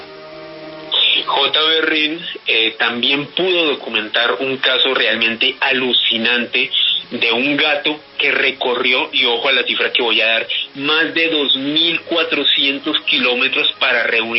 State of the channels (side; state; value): both; identical; correlation 1.00